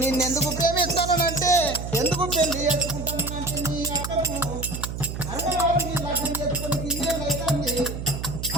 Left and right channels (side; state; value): right; noise; hum, 6 dB below the sound